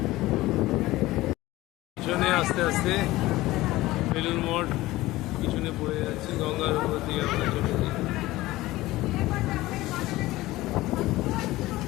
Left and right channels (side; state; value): right; quieter; 17.9 dB